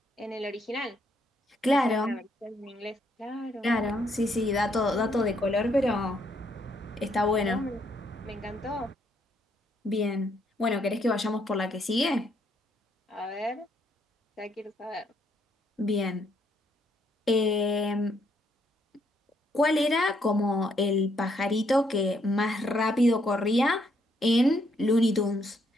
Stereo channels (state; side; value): normal; both; correlation 0.73